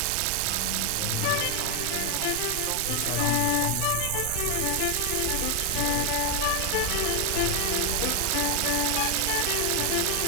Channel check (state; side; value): different; both; correlation 0.00